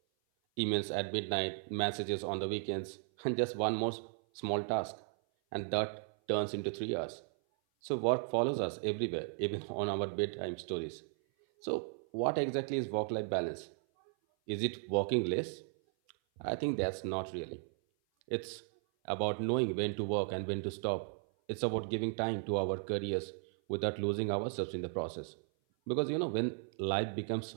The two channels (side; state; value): left; silent; 54 dB below the other